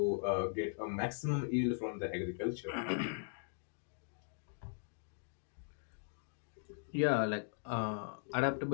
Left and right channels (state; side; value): silent; right; digital silence